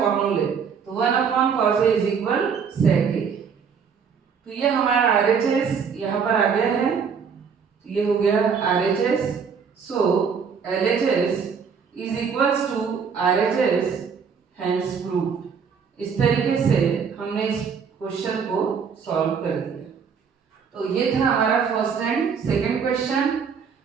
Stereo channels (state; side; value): quieter; left; 6.4 dB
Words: तो 1 upon cos a is equal sec a. तो ये हमारा आरएचएस यहाँ पर आ गया है, तो ये हो गया RHS. So LHS is equals to RHS, hence proved. इस तरीके से हमने इस क्वेश्चन को सॉल्व कर दिया। तो ये था हमारा फर्स्ट एंड सेकंड क्वेश्चन,